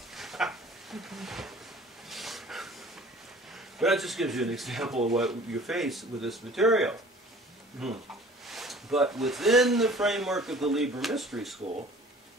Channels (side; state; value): both; normal; correlation 0.49